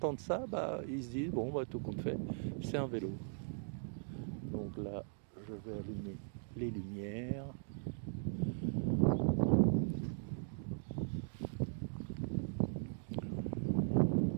ça, ils se disent, bon, tout compte fait, c'est un vélo. Donc là, je vais allumer les lumières.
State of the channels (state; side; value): silent; left; digital silence